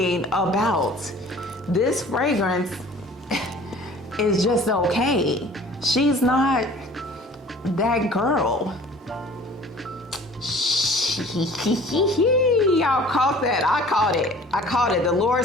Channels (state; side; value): normal; both; correlation 0.48